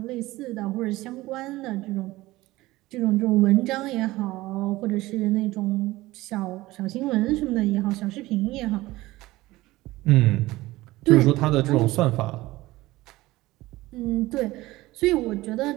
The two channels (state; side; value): quieter; left; 18.5 dB